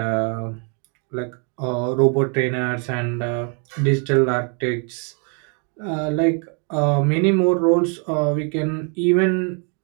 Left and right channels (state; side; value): quieter; left; 38.4 dB